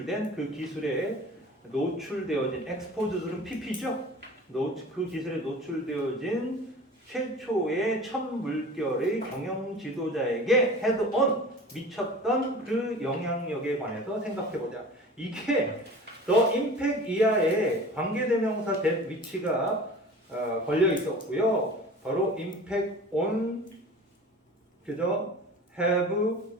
그 기술에 노출되어진 exposed는 PP죠. 그 기술에 노출되어진 최초의 첫 물결의 경영 지도자에게 head on 미쳤던 그 영향력에 관해서 생각해보자. 이게 the impact 이하에 관계대명사 that which가 걸려 있었고요. 바로 impact on 그죠? have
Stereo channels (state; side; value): normal; both; correlation 0.40